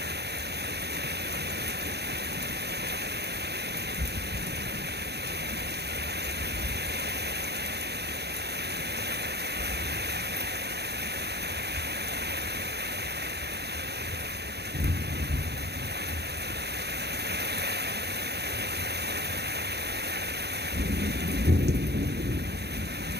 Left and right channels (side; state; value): left; late; 0.48 ms